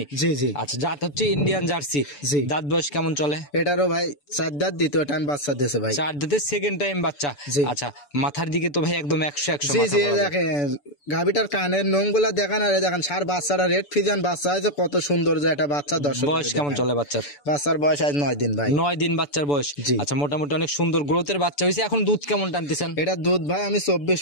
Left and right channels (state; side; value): late; right; 6.9 ms